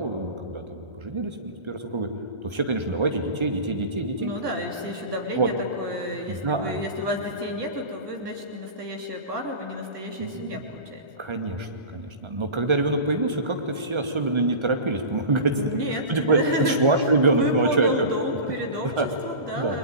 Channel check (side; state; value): left; late; 1.3 ms